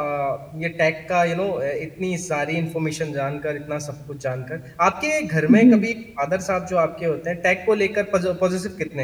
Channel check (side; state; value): both; identical; correlation 1.00